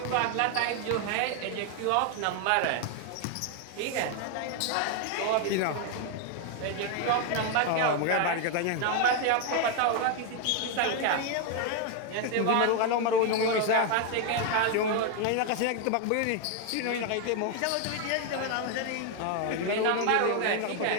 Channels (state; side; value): different; both; correlation 0.01